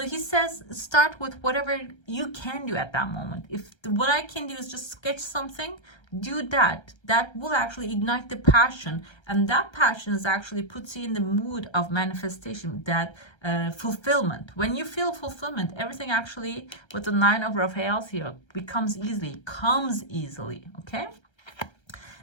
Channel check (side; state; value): right; late; 1.3 ms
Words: he says, start with whatever you can do at that moment. If what I can do is just sketch something, do that. That will actually ignite the passion, and that passion is actually puts you in the mood of manifestation, that fulfillment. When you feel fulfillment, everything actually with the 9 of Raphaels here comes easily, okay?